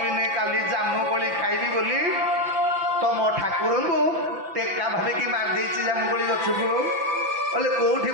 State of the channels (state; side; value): late; left; 6.0 ms